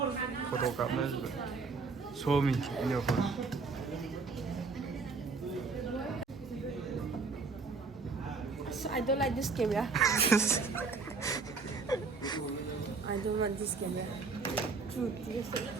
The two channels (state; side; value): quieter; left; 4.4 dB